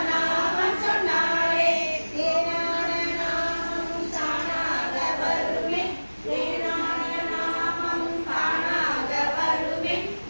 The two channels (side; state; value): both; inverted; correlation -1.00